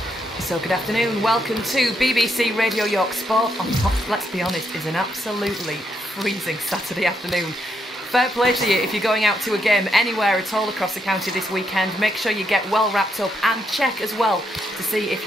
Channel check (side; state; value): both; normal; correlation 0.77